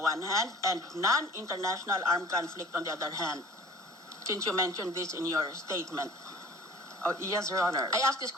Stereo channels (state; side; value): normal; both; correlation 0.47